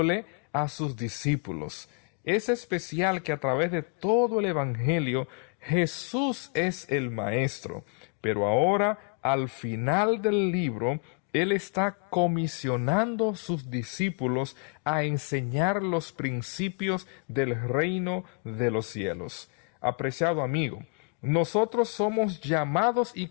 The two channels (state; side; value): quieter; right; 39.7 dB